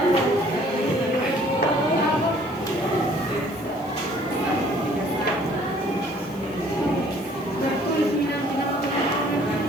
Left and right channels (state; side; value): noise; left; hiss, 26 dB below the sound